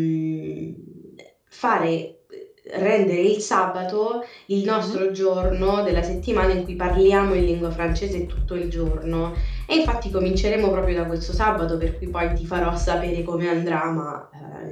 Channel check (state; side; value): identical; both; correlation 1.00